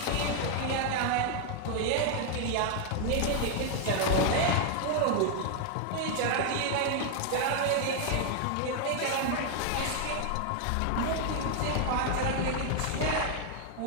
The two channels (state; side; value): different; both; correlation 0.00